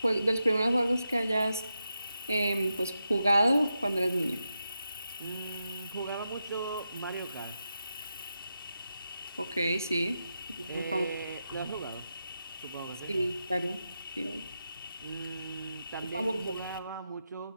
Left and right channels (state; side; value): inverted; both; correlation -0.88